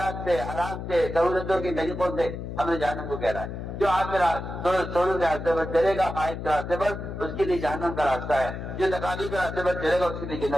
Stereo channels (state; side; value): noise; left; hum, 7 dB below the sound